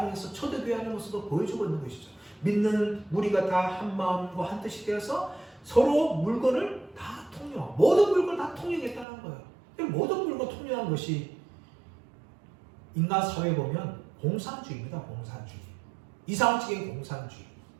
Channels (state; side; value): drops out; left; at 9.1 s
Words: 초대교회 안의 모습으로 보여주고 있는 것이죠. 믿는 우리가 다 한 마음과 한 뜻이 되어서 서로 물건을 다 통용하고 모든 물건을 다 통용했다는 거예요. 모든 물건 통용한 것이 인간 사회에 보면 공산주의입니다. 공산주의. 이상적인 공산주의.